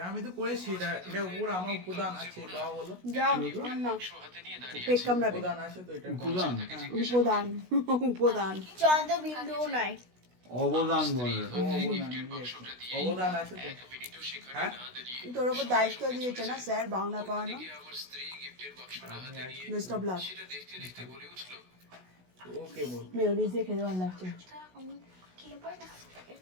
আমি তো করেছি। এটা উপর আমার উপাদান আছে। বাবা বলো, যাও না, পেট কামড়াবে। উপাদান আছে তো, এটা উপাদান চন্দ্র বিন্দুও নাই। অবদান বলে। অবদান আছে তো। হ্যাঁ তোর ওপর দায়িত্ব দিয়েছে না স্যার বাংলা পড়ানো। Best of luck. Okay ball. Mayonnaise দিয়ে খেতে ভালো লাগছে।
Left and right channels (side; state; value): left; late; 16 ms